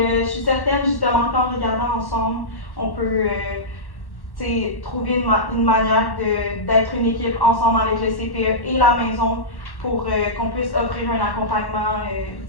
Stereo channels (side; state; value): right; late; 1.1 ms